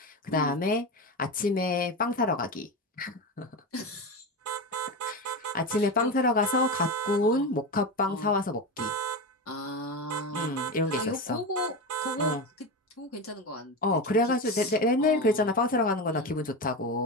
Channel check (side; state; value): both; normal; correlation 0.19